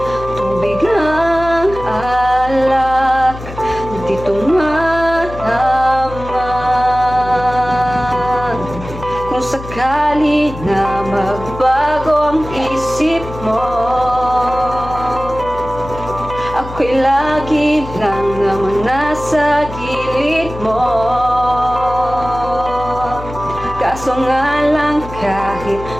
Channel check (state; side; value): noise; left; hum, 12 dB below the sound